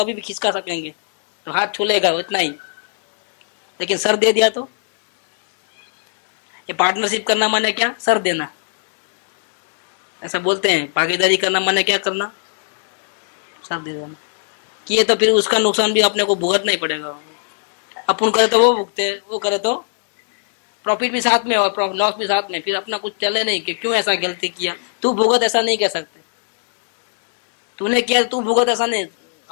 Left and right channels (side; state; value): right; silent; 57 dB below the other